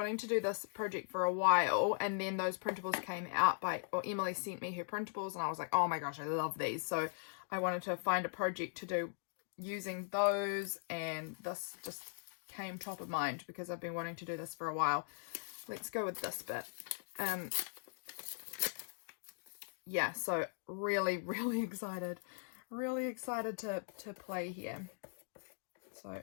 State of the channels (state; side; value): silent; right; digital silence